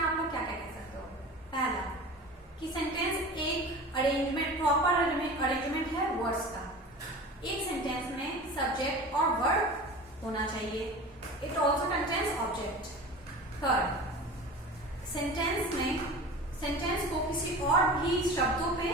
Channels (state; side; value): normal; both; correlation 0.35